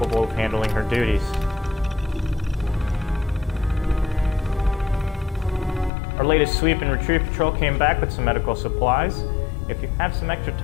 of handling her duties. Our latest sweep and retrieve patrol came back with some medical supplies. If you have some extra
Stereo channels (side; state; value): right; drops out; at 5.9 s